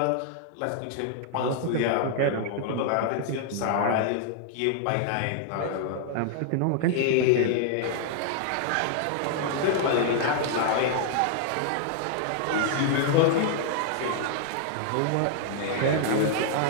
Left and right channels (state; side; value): different; both; correlation -0.01